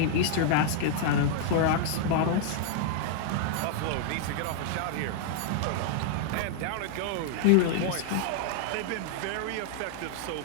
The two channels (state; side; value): different; both; correlation -0.01